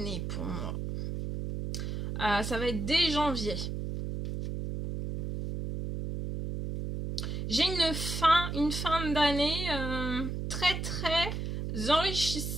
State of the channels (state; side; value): noise; right; hum, 4 dB below the sound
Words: pour moi. Ça va être dès janvier. J'ai une fin d'année très très